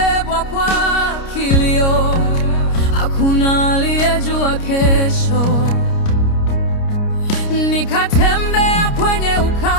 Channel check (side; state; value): right; late; 29 ms